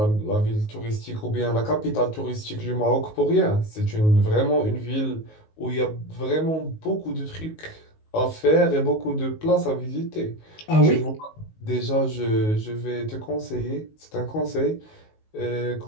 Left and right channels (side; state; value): right; late; 19 ms